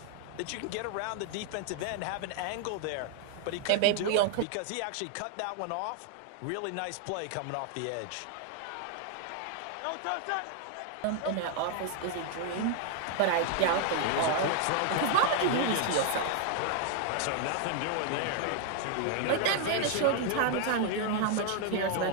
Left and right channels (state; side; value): different; both; correlation 0.00